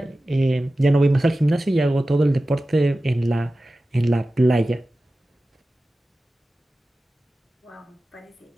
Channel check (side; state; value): both; normal; correlation 0.95